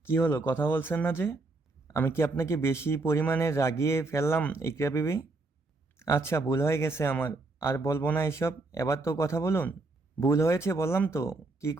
কি হলো, কথা বলছেন না যে? আমি কি আপনাকে বেশি পরিমাণে রাগিয়ে ফেললাম ইকরা বিবি? আচ্ছা, ভুল হয়ে গেছে আমার। আর বলবো না এসব। এবার তো কথা বলুন। ভুল হয়েছে বললাম তো। কি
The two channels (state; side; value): quieter; left; 3.3 dB